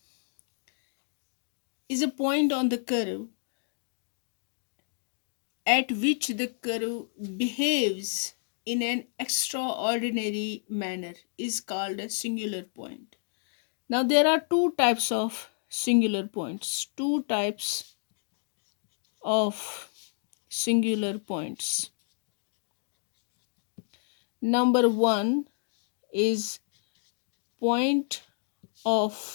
is a point on the curve at which the curve behaves in an extraordinary manner is called a singular point. Now there are two types of singular points. Two types of singular points. Number one is point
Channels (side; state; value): right; silent; digital silence